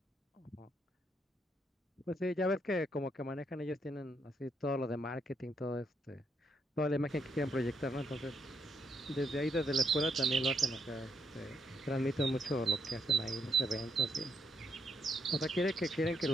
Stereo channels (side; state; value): both; normal; correlation 0.77